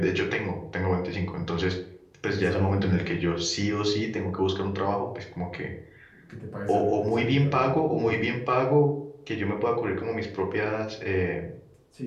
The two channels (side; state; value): both; identical; correlation 1.00